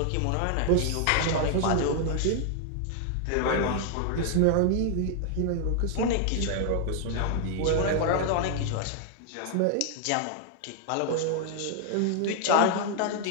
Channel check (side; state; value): both; different; correlation 0.00